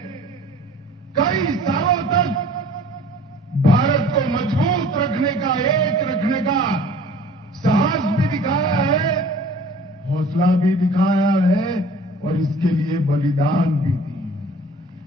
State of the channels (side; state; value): both; normal; correlation 0.48